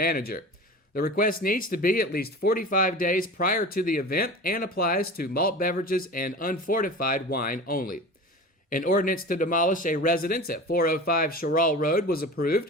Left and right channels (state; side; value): normal; both; correlation 0.34